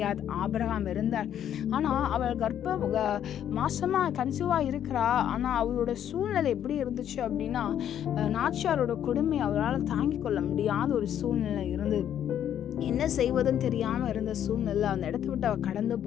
ஆபிரகாம் இருந்தார். ஆனா அவள் மாசமா கன்சீவா இருக்கிறா. ஆனா அவளோட சூழ்நிலை எப்படி இருந்துச்சு அப்படின்னா, நாச்சியாரோட கொடுமை அவளால் தாங்கிக் கொள்ள முடியாத ஒரு சூழ்நிலை இருந்தது. என்ன செய்வதுன்னு தெரியாம இருந்த சூழ்நிலை அந்த இடத்தை விட்டு அவ கடந்து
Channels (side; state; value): right; quieter; 10.1 dB